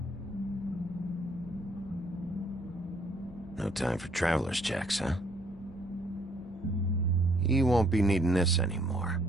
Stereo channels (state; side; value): normal; both; correlation 0.65